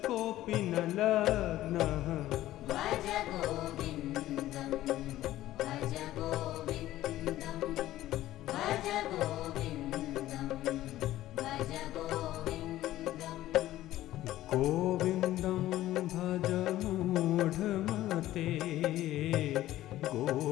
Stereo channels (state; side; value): quieter; right; 14.7 dB